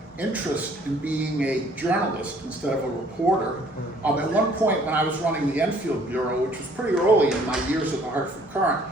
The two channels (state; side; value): normal; both; correlation 0.59